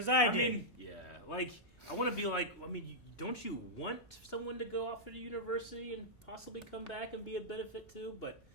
I did. mean, yeah, like, I want to be like, I mean, don't you want someone to go off to the university and possibly come back and be a benefit too? But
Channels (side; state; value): right; noise; rumble, 28 dB below the sound